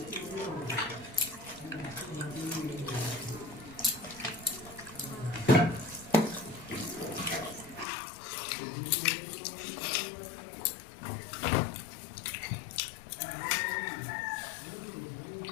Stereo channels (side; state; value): right; drops out; at 7.9 s